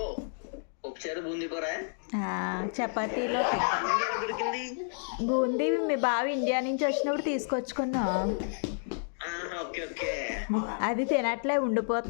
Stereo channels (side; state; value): right; silent; digital silence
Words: చపాతీలో బూందీ మీ బావ ఇండియా నుంచి వచ్చినప్పుడు తీసుకొచ్చుకున్నా. అది తినట్లే,